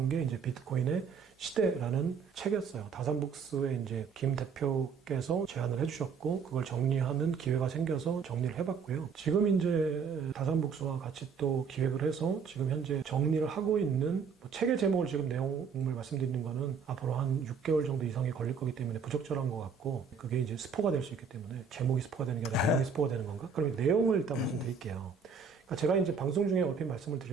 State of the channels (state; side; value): quieter; left; 5.8 dB